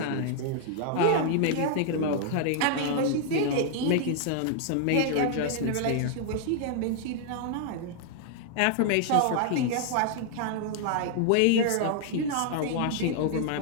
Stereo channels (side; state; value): both; different; correlation 0.00